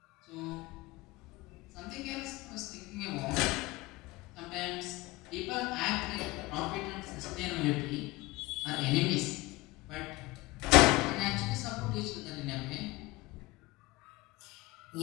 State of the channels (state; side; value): quieter; right; 21.3 dB